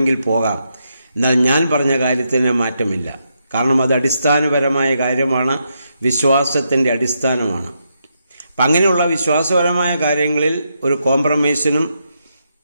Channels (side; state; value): both; inverted; correlation -0.81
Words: പോകാം, എന്നാൽ ഞാൻ പറഞ്ഞ കാര്യത്തിന് മാറ്റമില്ല. കാരണം അത് അടിസ്ഥാനപരമായ കാര്യമാണ്, വിശ്വാസത്തിന്റെ അടിസ്ഥാനമാണ്. അപ്പം അങ്ങനെയുള്ള വിശ്വാസപരമായ കാര്യങ്ങളിൽ ഒരു കോംപ്രമൈസിനും